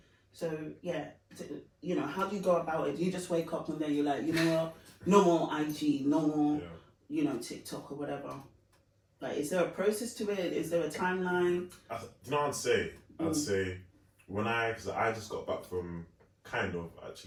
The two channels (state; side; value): identical; both; correlation 1.00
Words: So yeah, how do you go about it? Do you just wake up and then you're like, you know what, no more IG, no more, TikTok or whatever? Like, is there a process to it? Is there a timeline? I'd say because I just got back from